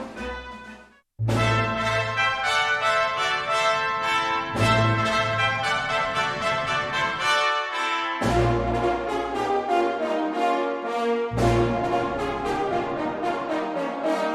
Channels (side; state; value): both; identical; correlation 1.00